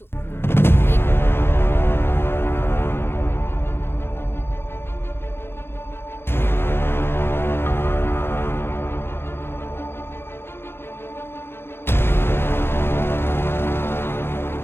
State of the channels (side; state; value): right; late; 0.11 ms